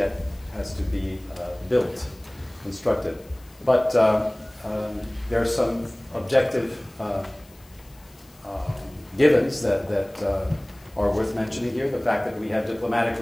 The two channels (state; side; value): noise; left; hiss, 28 dB below the sound